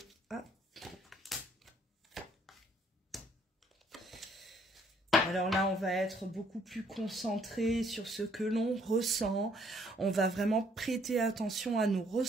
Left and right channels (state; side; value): normal; both; correlation 0.65